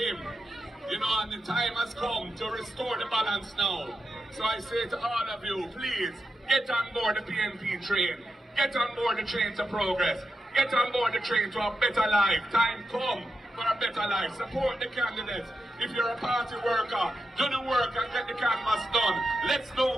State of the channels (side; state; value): both; normal; correlation 0.88